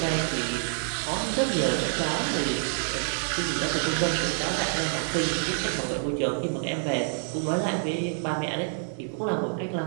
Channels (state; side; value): silent; left; digital silence